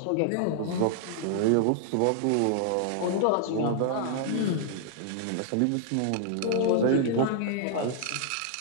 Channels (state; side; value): different; both; correlation -0.01